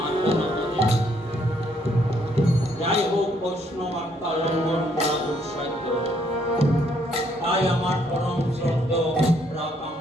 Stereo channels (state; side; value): normal; both; correlation 0.69